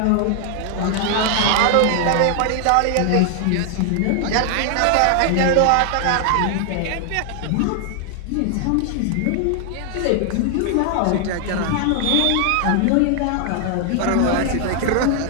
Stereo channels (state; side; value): different; both; correlation 0.00